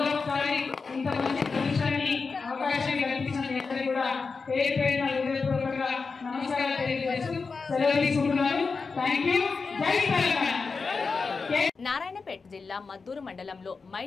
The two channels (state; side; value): quieter; right; 4.6 dB